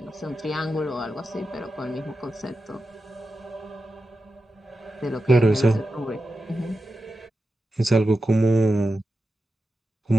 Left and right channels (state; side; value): normal; both; correlation 0.91